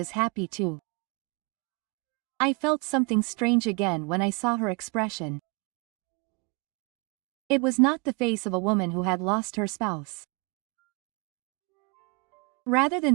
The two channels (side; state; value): left; quieter; 30.0 dB